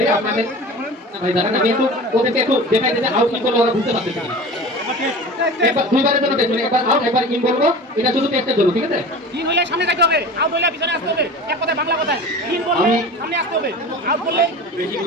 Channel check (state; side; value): normal; both; correlation 0.36